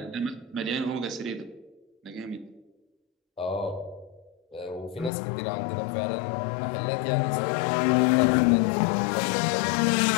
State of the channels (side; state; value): right; drops out; at 5.1 s